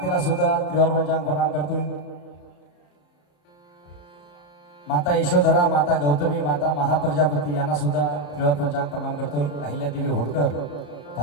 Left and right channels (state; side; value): late; right; 34 ms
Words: सुद्धा त्रिवार पंचांग प्रणाम करतोय. माता यशोधरा, माता गौतमी, माता महाप्रजापती यांना सुद्धा त्रिवार पंचांग प्रणाम करतोय. अहिल्यादेवी होळकर,